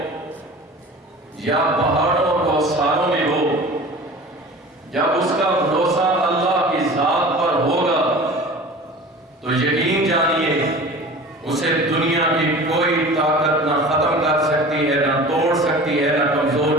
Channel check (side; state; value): both; normal; correlation 0.39